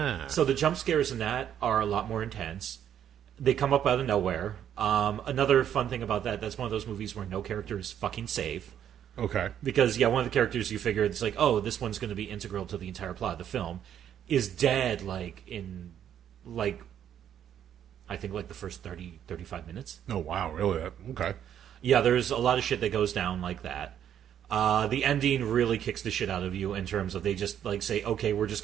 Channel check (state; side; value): quieter; left; 9.8 dB